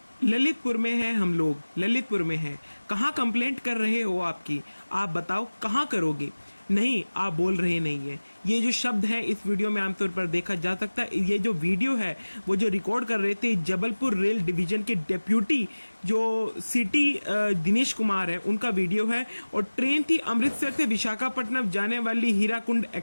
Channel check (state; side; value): inverted; both; correlation -1.00